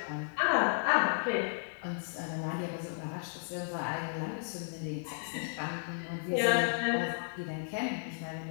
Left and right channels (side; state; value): right; silent; 55 dB below the other